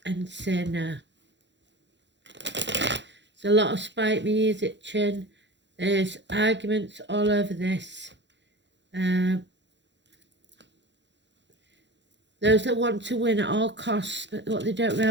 and say no. There's a lot of spite me ears itching. There's arguments all over this. Those that want to win at all costs, but what they don't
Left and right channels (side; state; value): left; late; 0.52 ms